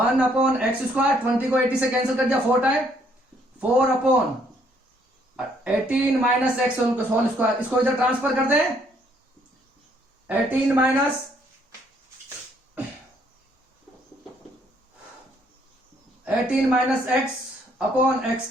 अपॉन एक्स स्क्वायर, 20 को 80 से कैंसिल कर दिया 4 time, 4 upon 18 minus x whole square. इसको इधर ट्रांसफर कर दें, 18 माइनस एक्स अपॉन एक्स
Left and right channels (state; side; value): normal; both; correlation 0.67